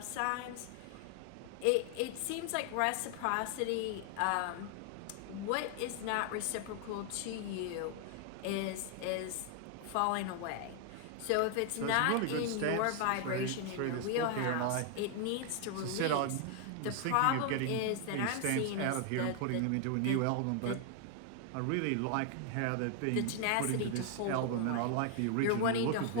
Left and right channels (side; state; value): both; different; correlation 0.00